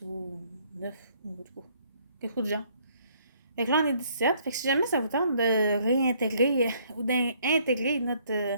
ou 9, ou quelque chose de genre. Fait que là, on est 17. Fait que si jamais ça vous tente de réintégrer ou d'intégrer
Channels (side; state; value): both; inverted; correlation -0.65